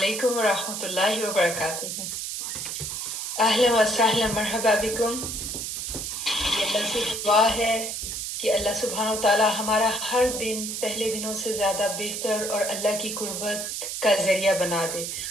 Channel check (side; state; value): right; noise; hiss, 4 dB below the sound